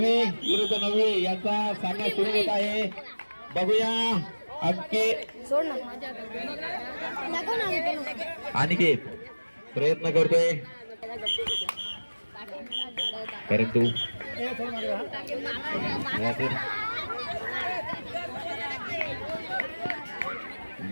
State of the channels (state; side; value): inverted; both; correlation -1.00